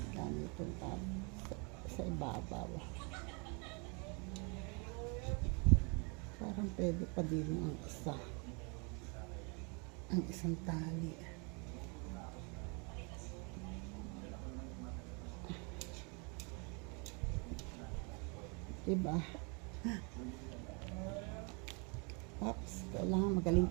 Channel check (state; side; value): quieter; left; 33.2 dB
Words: ganito sa ibabaw. Parang pwede pa din ang isa. Ang isang tali. Diba? Oops, kailangan magaling